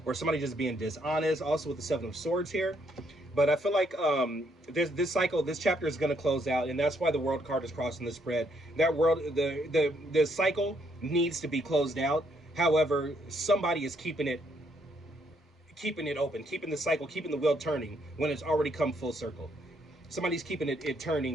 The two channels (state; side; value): normal; both; correlation 0.72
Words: or somebody just being dishonest. Also with the Seven of Swords here. But I feel like this chapter is going to close out, and that's why the World card is crossing the spread. The cycle needs to be closed out. However, somebody is keeping it open, keeping the cycle, keeping the wheel turning when it's already come full circle. Somebody's keeping it